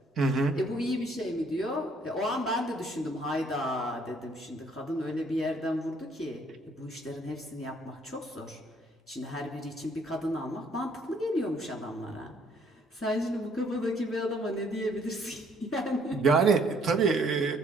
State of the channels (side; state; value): both; normal; correlation 0.64